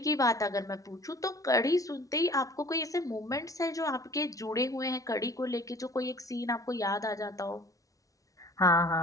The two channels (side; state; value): right; late; 0.17 ms